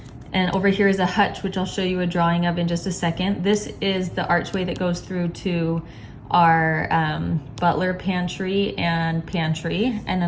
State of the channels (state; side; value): identical; both; correlation 1.00